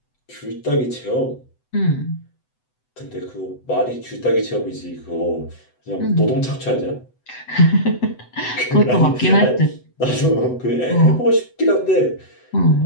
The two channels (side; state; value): right; late; 8.0 ms